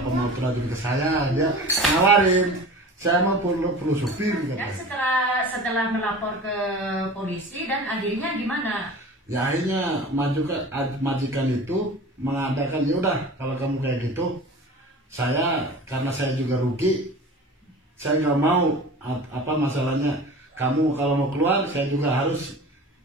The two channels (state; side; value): normal; both; correlation 0.37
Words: mau terajun ke saya, dia nawarin. Saya mau perlu supir gitu. Dan setelah melapor ke polisi dan akhirnya gimana? Ya akhirnya majikan itu mengadakan, ya udah kalau kamu kayak gitu, karena saya juga rugi, saya nggak mau masalahnya. Kamu kalau mau keluar, saya juga harus